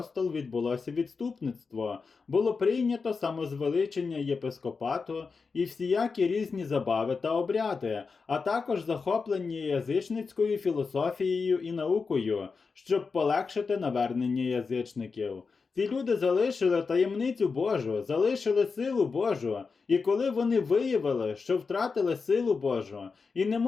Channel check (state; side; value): quieter; right; 4.8 dB